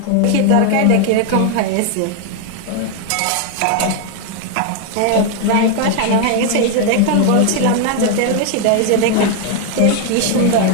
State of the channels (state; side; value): different; both; correlation 0.01